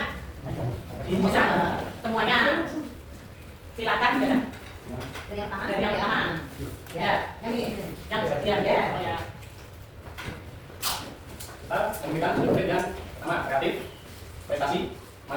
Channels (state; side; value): identical; both; correlation 1.00